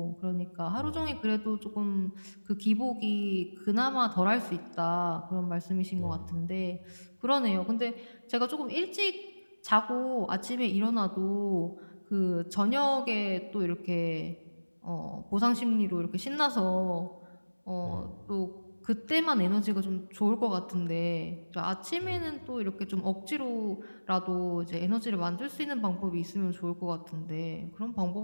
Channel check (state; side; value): inverted; both; correlation -1.00